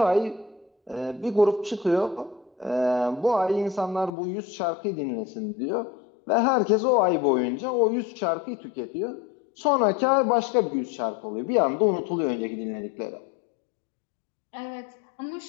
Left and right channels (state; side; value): drops out; right; at 4.1 s